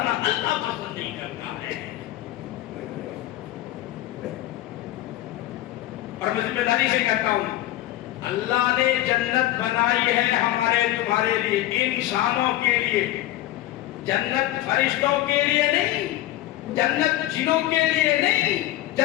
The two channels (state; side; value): quieter; right; 14.7 dB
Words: اللہ پسند نہیں کرتا ہے۔ اور میں ذمہ داری سے کہتا ہوں، اللہ نے جنت بنائی ہے ہمارے تمہارے لیے، انسانوں کے لیے، جنت فرشتوں کے لیے نہیں، جنت جنوں کے لیے نہیں،